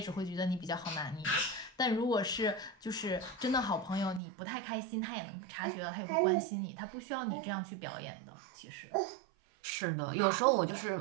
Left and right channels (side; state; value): left; drops out; at 4.2 s